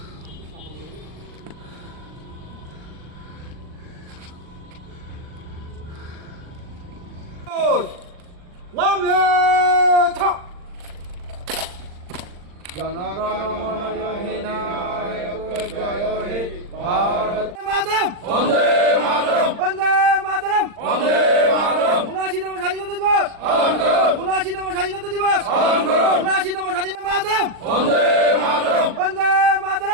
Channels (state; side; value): late; left; 39 ms